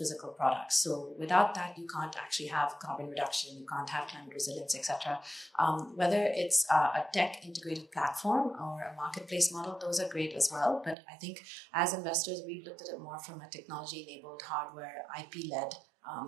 products. So without that, you can't actually have carbon reduction, you can't have climate resilience, etc. Whether it's a tech integrated platform or a marketplace model, those are great as well. But I think as investors, we've looked at it more from a technology-enabled, hardware, IP-led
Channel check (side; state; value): left; drops out; at 11.0 s